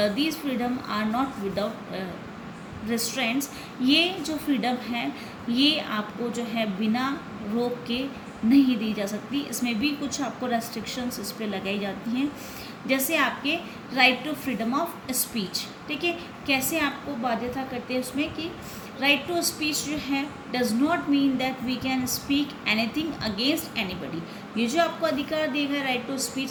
freedom are not without restraints, ये जो फ्रीडम है ये आपको जो है बिना रोक के नहीं दी जा सकती, इसमें भी कुछ आपको रेस्ट्रिक्शंस इस पर लगाई जाती हैं, जैसे आपके right to freedom of speech, ठीक है। कैसे आपको बाध्यता करते हैं उसमें कि राइट टू स्पीच जो है does not mean that we can speak anything against anybody, ये जो आपको अधिकार दिया गया राइट टू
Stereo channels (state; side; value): identical; both; correlation 1.00